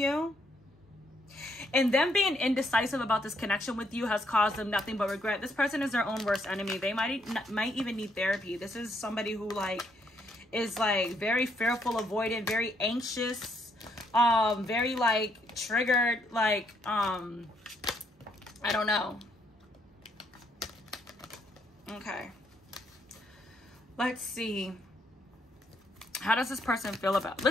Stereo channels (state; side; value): normal; both; correlation 0.73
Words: And them being indecisive about this connection with you has caused them nothing but regret. This person is their own worst enemy. They might even need therapy. This is somebody who like is like very fearful, avoidant, very anxious, very like triggered, like I don't know. Okay. Let's see. How does this person feel about?